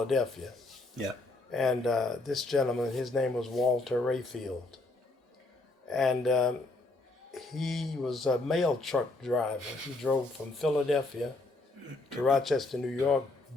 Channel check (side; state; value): right; quieter; 3.0 dB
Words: Yeah. And this gentleman, his name was Walter Rayfield. And he was a mail truck driver. He drove from Philadelphia to Rochester, New York,